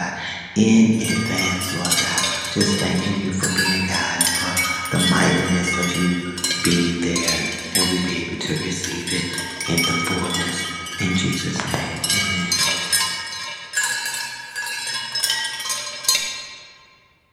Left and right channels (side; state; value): both; identical; correlation 1.00